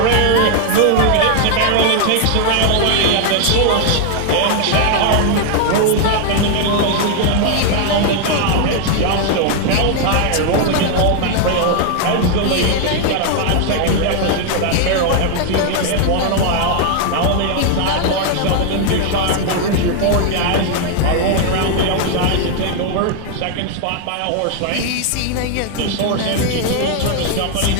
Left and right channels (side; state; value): both; different; correlation 0.00